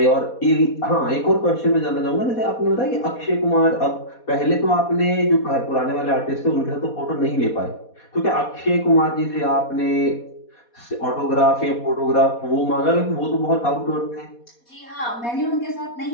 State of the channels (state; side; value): late; right; 4.2 ms